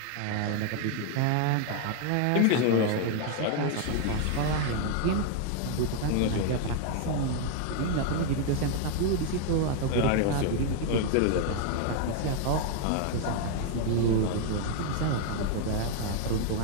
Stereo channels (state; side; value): different; both; correlation 0.00